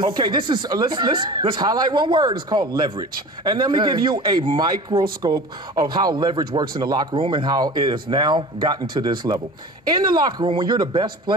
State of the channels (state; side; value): normal; both; correlation 0.38